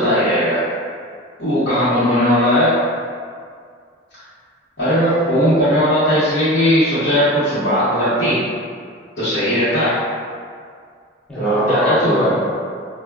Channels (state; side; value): normal; both; correlation 0.30